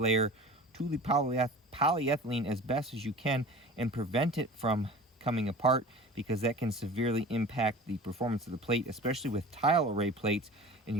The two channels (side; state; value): both; normal; correlation 0.39